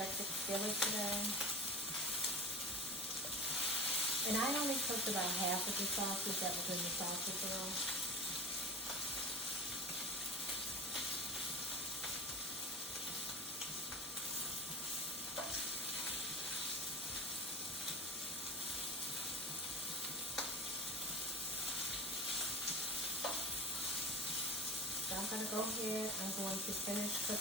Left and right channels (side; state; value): both; normal; correlation 0.31